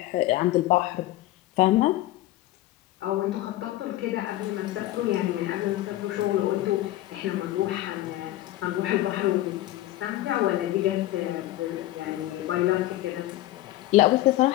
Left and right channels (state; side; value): quieter; right; 15.7 dB